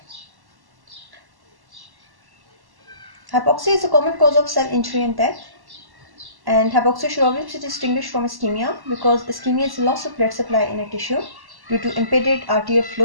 Hypoxia is a common cause of cell injury and death, and hypoxia should always be distinguished from ischemia because ischemia is loss of blood supply in a tissue due to impeded arterial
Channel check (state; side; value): late; left; 1.1 ms